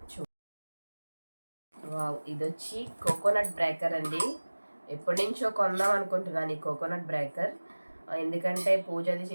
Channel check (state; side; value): inverted; both; correlation -1.00